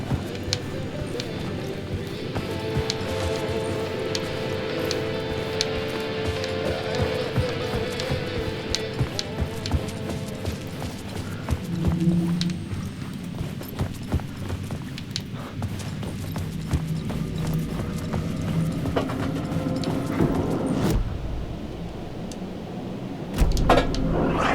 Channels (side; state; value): both; identical; correlation 1.00